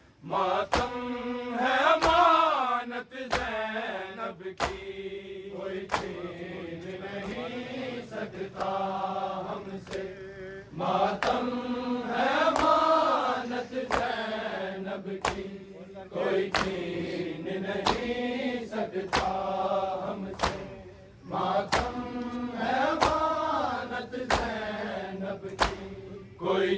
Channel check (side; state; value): both; identical; correlation 1.00